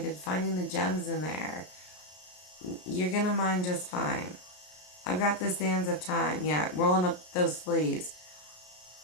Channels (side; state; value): right; late; 33 ms